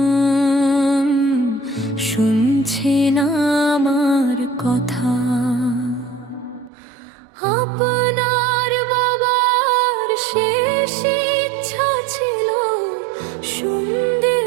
শুনছেন আমার কথা? আপনার বাবার শেষ ইচ্ছা ছিল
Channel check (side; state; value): left; drops out; at 6.7 s